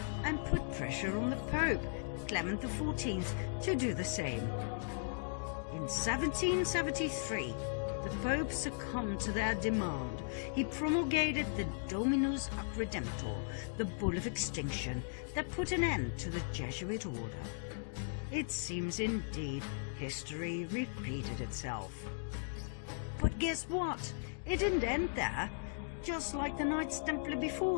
and put pressure on the Pope, Clement XIV, to do the same. In 1773, the Pope succumbed to their demand. He promulgated the Dominus Ac Redemptor, the Bull of Extinction, that put an end to the Jesuit order. It seems indeed history repeated itself. But guess what? It didn't end there. Just like the Knights Templar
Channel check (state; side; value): silent; right; digital silence